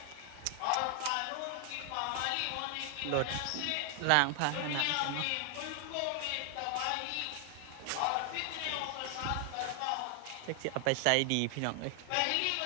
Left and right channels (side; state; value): both; different; correlation 0.00